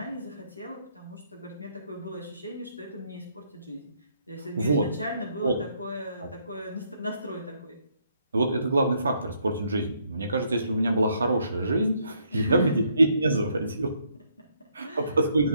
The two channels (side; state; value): both; inverted; correlation -0.72